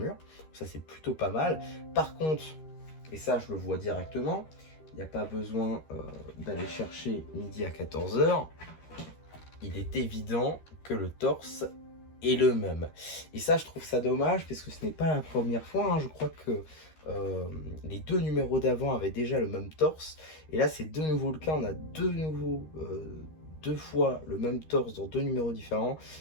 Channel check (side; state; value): right; late; 13 ms